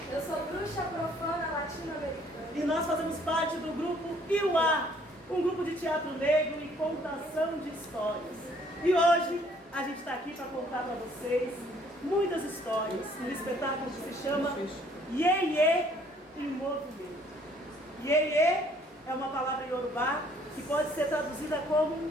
Eu sou bruxa profana latino-americana. E nós fazemos parte do grupo Iuá, um grupo de teatro negro e contação de histórias. E hoje a gente está aqui para contar para vocês muitas histórias, um espetáculo que se chama Iê-Iê em Movimento. Iê-Iê é uma palavra iorubá que pode ser traduzida como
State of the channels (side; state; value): both; normal; correlation 0.61